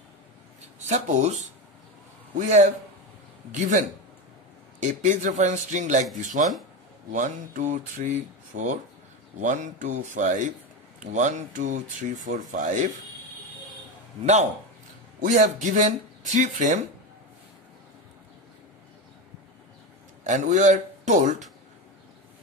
Suppose we have given a page reference string like this one, 1, 2, 3, 4, 1, 2, 5, 1, 2, 3, 4, 5. Now we have given 3 frame and we are told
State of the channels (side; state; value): both; normal; correlation 0.17